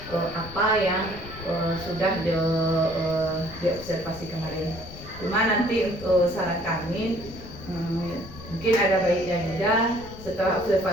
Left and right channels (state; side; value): noise; left; rumble, 15 dB below the sound